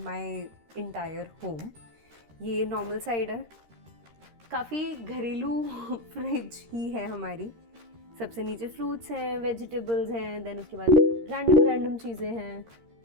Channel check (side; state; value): left; late; 13 ms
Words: my entire home. ये नॉर्मल साइड है, काफ़ी घरेलू फ्रिज ही है हमारी। सबसे नीचे फ्रूट्स हैं, वेजिटेबल्स हैं, देन उसके बाद रैंडम चीज़ें हैं।